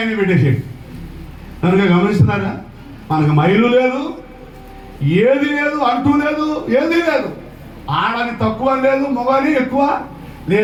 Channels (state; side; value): identical; both; correlation 1.00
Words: పెట్టేసేది. కనుక గమనిస్తున్నారా? మనకు మైలు లేదు, ఏది లేదు, అంటూ లేదు, ఏది లేదు. ఆడని తక్కువ లేదు, మగని ఎక్కువ